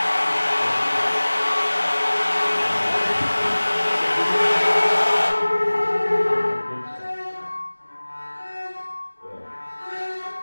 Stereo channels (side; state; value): both; inverted; correlation -1.00